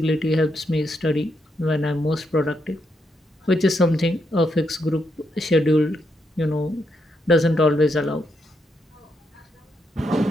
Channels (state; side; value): normal; both; correlation 0.80